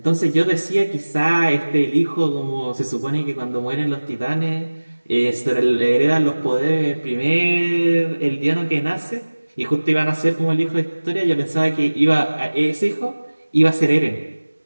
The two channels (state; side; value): inverted; both; correlation -1.00